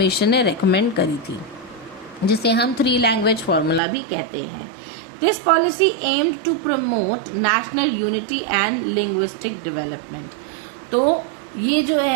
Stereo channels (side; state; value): left; drops out; at 3.8 s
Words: ने रेकमेंड करी थी जिसे हम 3 लैंग्वेज फार्मूला भी कहते हैं. This policy aimed to promote national unity and linguistic development. तो ये जो